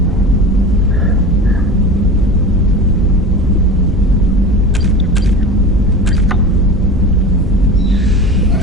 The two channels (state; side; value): normal; both; correlation 0.32